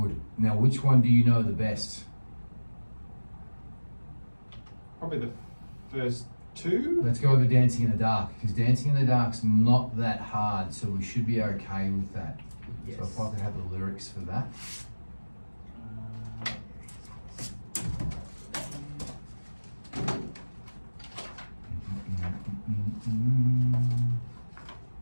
Now, which one do you know the best? Probably the first 2. Let's go over Dancing in the Dark, because Dancing in the Dark's not that hard, so we should be okay with that. Yes. So if I could have the lyrics for that.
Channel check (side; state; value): both; inverted; correlation -1.00